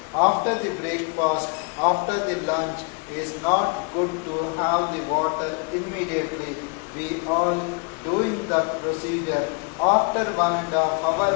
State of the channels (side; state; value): right; quieter; 34.3 dB